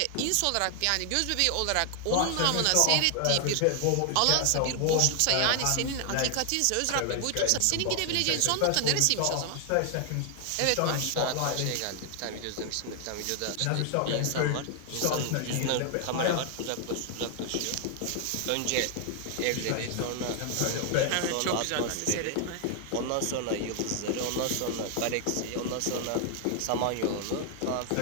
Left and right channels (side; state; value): both; different; correlation 0.00